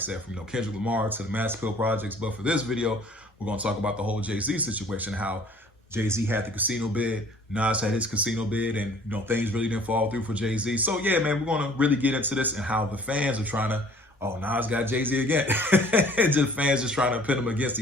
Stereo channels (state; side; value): normal; both; correlation 0.53